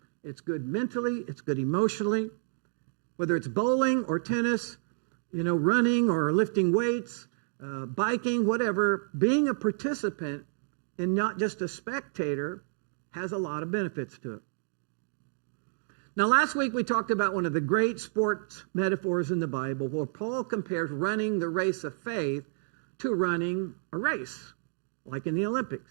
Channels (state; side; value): silent; left; digital silence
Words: It's good mentally. It's good emotionally. Whether it's bowling or tennis, running or lifting weights, biking, whatever, being a participant and not just a spectator has a lot of benefits to it. Now, last week we talked about one of the great sports metaphors in the Bible, where Paul compares running the race of faith to running a race, like in the Olympics.